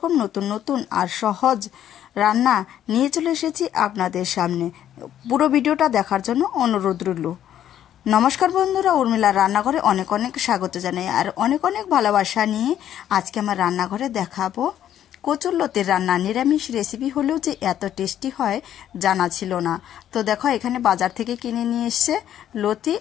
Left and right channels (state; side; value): quieter; right; 10.9 dB